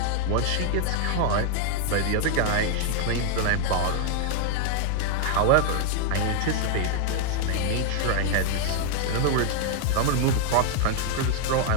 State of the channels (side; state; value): both; different; correlation 0.00